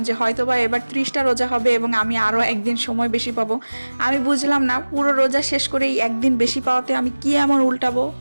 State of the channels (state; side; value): inverted; both; correlation -1.00